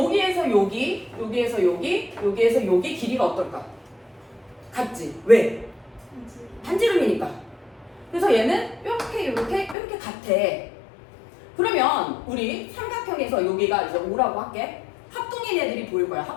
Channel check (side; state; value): right; drops out; at 9.8 s